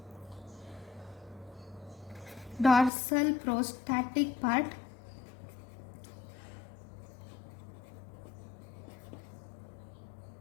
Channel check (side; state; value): right; drops out; at 2.9 s